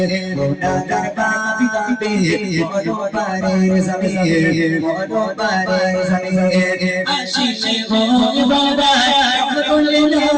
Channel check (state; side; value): identical; both; correlation 1.00